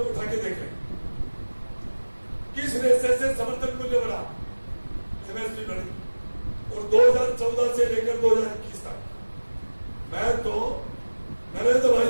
उठा के देख लें, किस रेशे से समर्थन मूल्य बढ़ा, एमएसपी बढ़ी। और 2014 से लेकर 2021 तक मैं तो नरेंद्र भाई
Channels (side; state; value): both; inverted; correlation -1.00